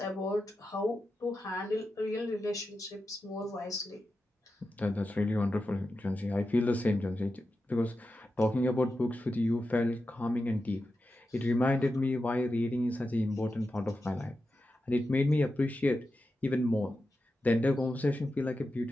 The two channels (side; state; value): both; normal; correlation 0.90